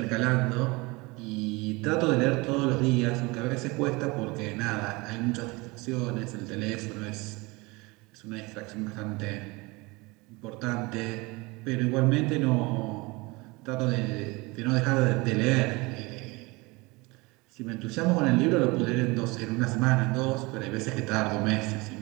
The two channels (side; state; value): left; quieter; 24.8 dB